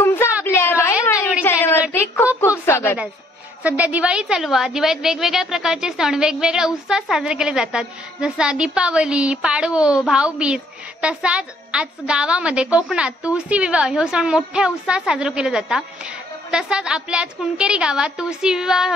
आपल्या रॉयल मालवणी चॅनलवरती खूप खूप स्वागत आहे. सध्या दिवाळी चालू आहे. दिवाळीत वेगवेगळ्या प्रकारचे सण वेगवेगळ्या उत्साहात साजरे केले जातात. जसा दीपावली, पाडवो, भाऊबीज. तसाच आज गावामध्ये कोकणात तुळशी विवाह हे सण मोठ्या उत्साहात साजरे केले जातात. तसाच आपल्या आज कुणकेरी गावात तुळशी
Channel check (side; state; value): both; normal; correlation 0.65